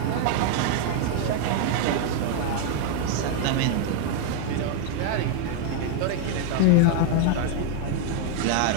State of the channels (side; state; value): both; different; correlation 0.00